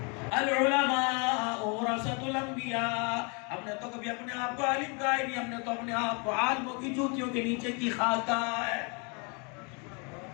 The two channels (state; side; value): quieter; right; 33.8 dB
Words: अल-उलमा वरसतुल अंबिया। हमने तो कभी अपने आप को आलिम कहा ही नहीं, हमने तो अपने आप को आलिमों की जूतियों के नीचे की खाक कहा है।